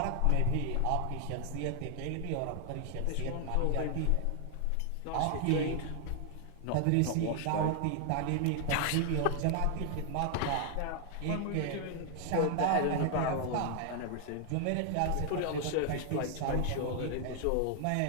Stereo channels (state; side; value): different; both; correlation 0.00